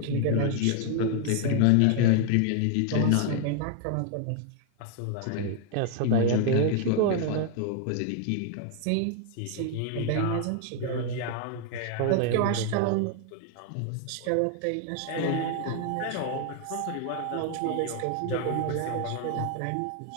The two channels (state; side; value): different; both; correlation 0.00